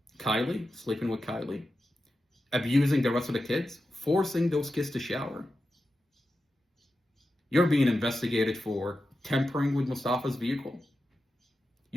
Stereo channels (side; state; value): both; normal; correlation 0.91